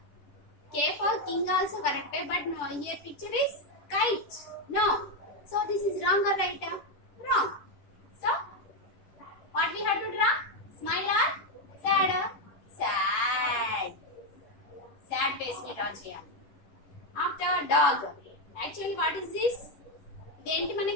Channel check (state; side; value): late; right; 10 ms